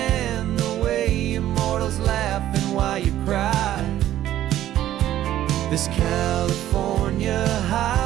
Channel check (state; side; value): quieter; left; 12.8 dB